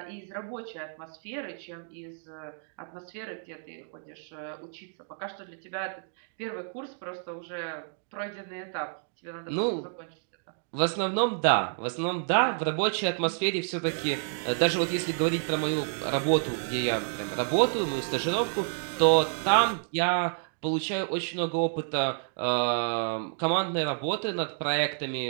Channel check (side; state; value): left; silent; digital silence